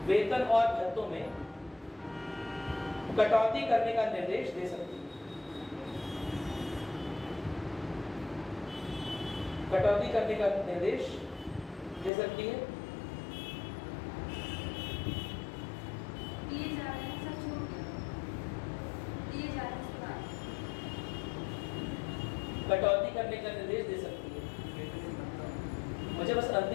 में कटौती करने का निर्देश दे सकती है। कटौती करने का निर्देश दे सकती है। कटौती करने का निर्देश दे सकती है। मुझे बस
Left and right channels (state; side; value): drops out; right; at 12.1 s